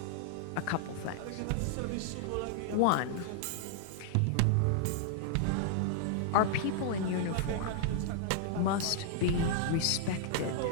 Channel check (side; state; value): both; different; correlation -0.01